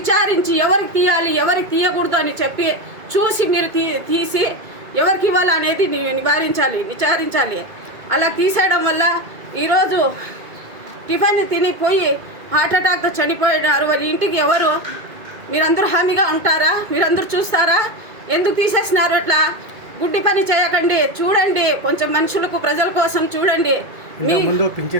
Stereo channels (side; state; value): left; late; 2.2 ms